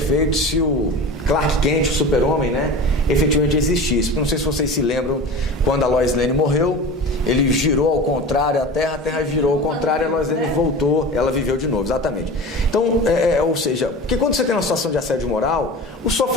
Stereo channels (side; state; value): both; normal; correlation 0.33